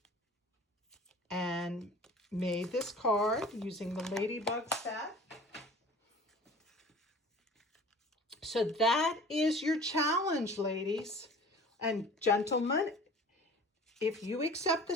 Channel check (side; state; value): both; normal; correlation 0.44